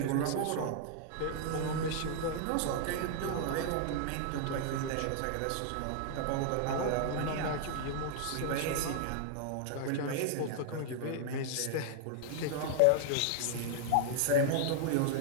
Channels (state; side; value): different; both; correlation -0.01